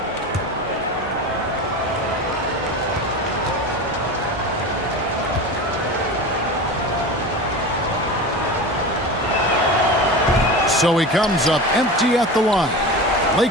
So he comes up empty at the line.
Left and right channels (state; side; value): normal; both; correlation 0.29